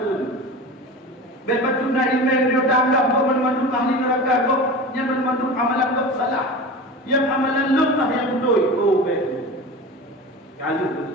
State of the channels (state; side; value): normal; both; correlation 0.31